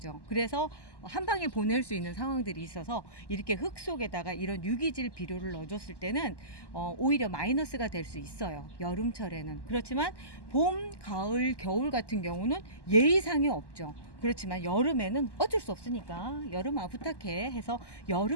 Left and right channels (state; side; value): late; right; 1.1 ms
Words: 그래서 한 방에 보낼 수 있는 상황들이 있어서 이렇게 흙 속에다가 이런 유기질 비료를 넣어줬을 때는 오히려 마이너스가 될 수 있어요. 여름철에는. 그렇지만 봄, 가을, 겨울 같은 경우는 예의상이 없죠. 그렇지만 여름에는 어쩔 수 없으니까 여름아 부탁해 해서